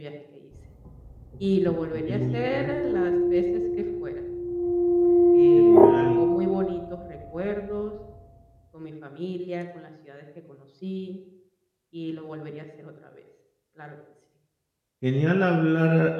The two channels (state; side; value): identical; both; correlation 1.00